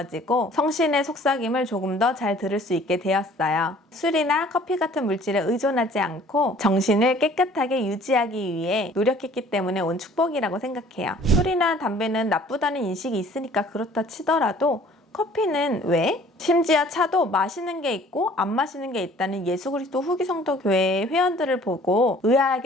성신의 속삭임을 조금 더 잘 들을 수 있게 되었어요. 술이나 커피 같은 물질에 의존하지 않고 정신을 깨끗하게 유지하기 위해 노력했기 때문에 온 축복이라고 생각해요. 술이나 담배는 나쁘다는 인식이 있으니까 그렇다 치더라도 커피는 왜? 심지어 차도 마시는 게 있고 안 마시는 게 있다는 예수 그리스도 후기 성도 교회의 회원들을 보고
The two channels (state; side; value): normal; both; correlation 0.53